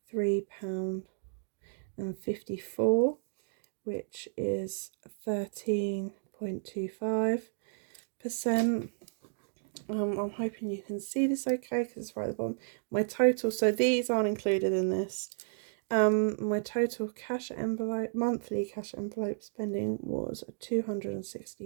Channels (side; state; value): left; silent; digital silence